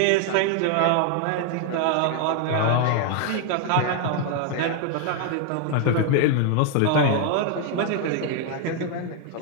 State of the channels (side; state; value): both; different; correlation 0.00